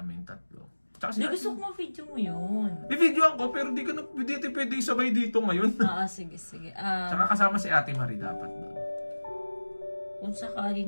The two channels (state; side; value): inverted; both; correlation -1.00